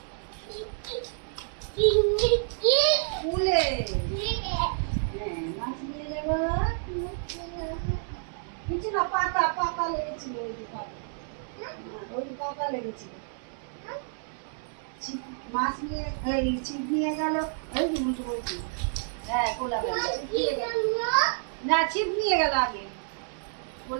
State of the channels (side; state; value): left; silent; 57 dB below the other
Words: কূলে হ্যাঁ মাছ নিয়ে যাবো কিছু না পাতা পাতা লেগেছিল ওই যে পাতা ওই পাতা লেগেছিল মাছ নিয়ে এই ছিপ নিয়ে গেল ওই যে উল্টো বলছি হ্যাঁ কোলা ব্যাঙ না ছিপ নিয়ে গেল আগে